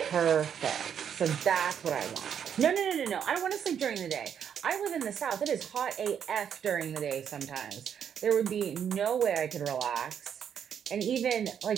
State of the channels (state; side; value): quieter; left; 8.3 dB